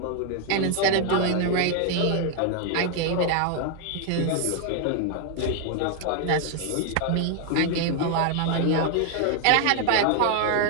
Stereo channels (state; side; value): different; both; correlation 0.00